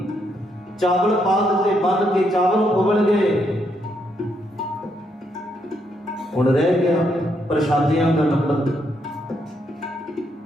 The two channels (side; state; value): both; normal; correlation 0.76